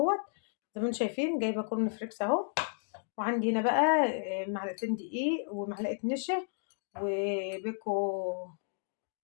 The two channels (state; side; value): silent; right; digital silence